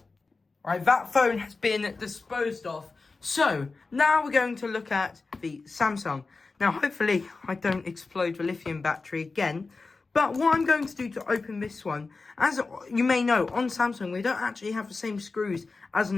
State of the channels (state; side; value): quieter; right; 4.0 dB